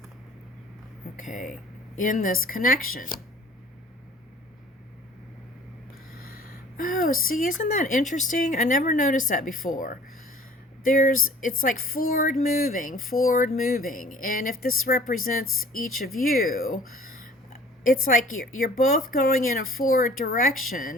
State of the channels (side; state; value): both; normal; correlation 0.50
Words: Okay. In this connection. Oh, see, isn't that interesting? I never noticed that before. It's like forward moving. And if this represents each of you, it's like you're both going in a forward